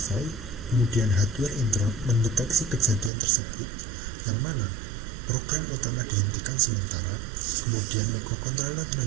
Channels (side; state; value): left; drops out; at 3.1 s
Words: Kemudian hardware interrupt mendeteksi kejadian tersebut, yang mana program utama dihentikan sementara. Kemudian microcontroller